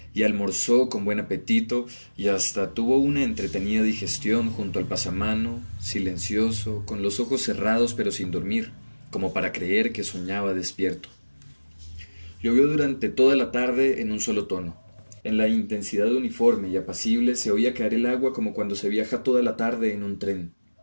y almorzó con buen apetito, y hasta tuvo una entretenida digestión junto al pasamano, silencioso, con los ojos cerrados pero sin dormir, como para creer que soñaba despierto. Llovió durante toda la tarde en un solo tono. En la intensidad uniforme y apacible se oía caer el agua como cuando se viaja toda la tarde en un tren.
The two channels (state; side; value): inverted; both; correlation -1.00